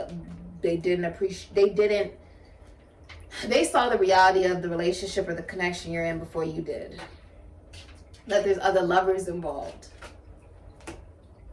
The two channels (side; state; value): both; identical; correlation 1.00